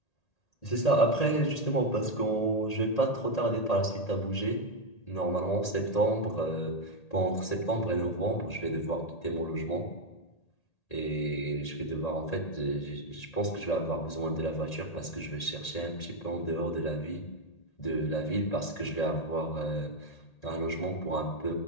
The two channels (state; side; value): late; right; 1.8 ms